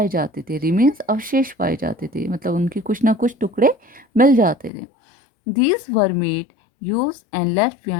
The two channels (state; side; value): drops out; right; at 4.7 s